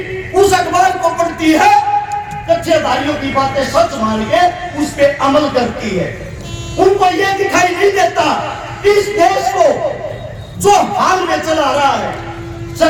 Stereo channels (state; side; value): identical; both; correlation 1.00